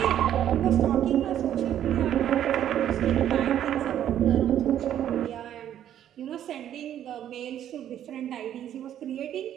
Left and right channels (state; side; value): quieter; left; 10.8 dB